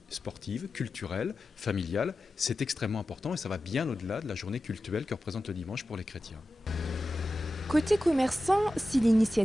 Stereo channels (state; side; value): normal; both; correlation 0.93